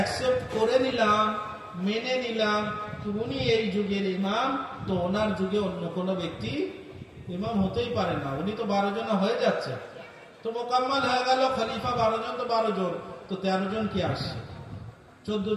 করে নিলাম, মেনে নিলাম উনি এই যুগের ইমাম, তো ওনার যুগে অন্য কোনো ব্যক্তি ইমাম হতেই পারে না। উনি তো 12 জন হয়ে যাচ্ছে, তো মোকাম্মল হয়ে গেল। খলিফা 12 জন, তো 12 জন, তো 13 জন কি আসছে, 14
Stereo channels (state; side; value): identical; both; correlation 1.00